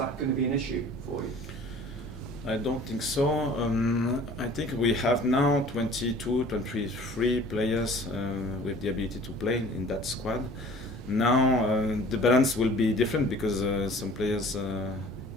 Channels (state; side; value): normal; both; correlation 0.48